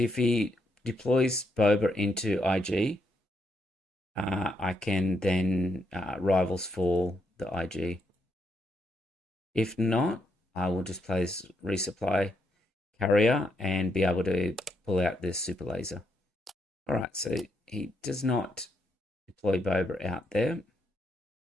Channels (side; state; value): both; normal; correlation 0.78